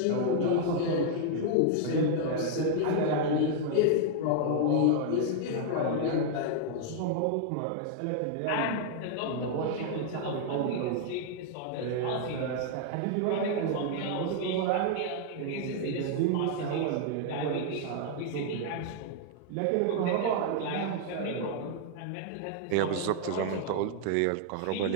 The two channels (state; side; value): different; both; correlation -0.01